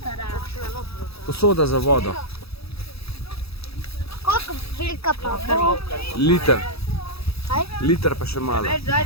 Posoda za vodo. Koliko velika pa bo? Liter. Kaj? Liter pa še malo. Več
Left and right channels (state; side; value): late; right; 0.77 ms